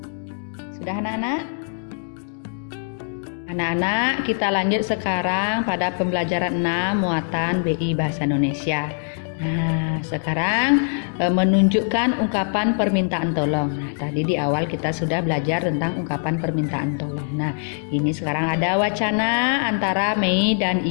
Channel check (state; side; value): silent; right; digital silence